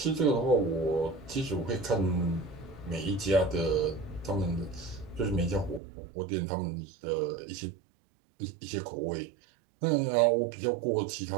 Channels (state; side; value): drops out; left; at 5.8 s